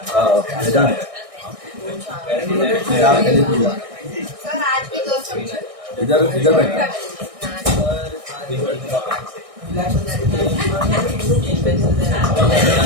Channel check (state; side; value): late; left; 1.6 ms